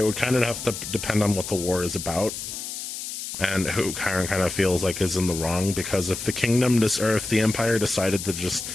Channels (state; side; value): noise; left; hiss, 7 dB below the sound